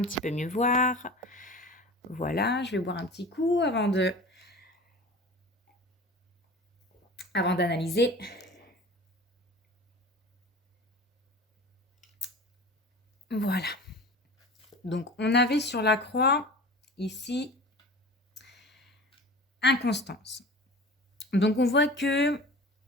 petit peu mieux voir. Voilà, je vais boire un petit coup avant d'analyser. Voilà. Donc, on avait sur la croix, ici, inconstance. Donc, on voit que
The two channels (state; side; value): normal; both; correlation 0.37